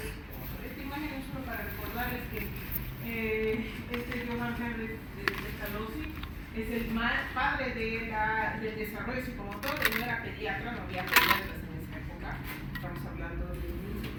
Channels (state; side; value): identical; both; correlation 1.00